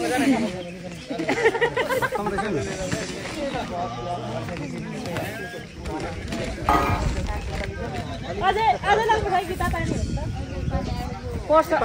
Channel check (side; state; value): both; identical; correlation 1.00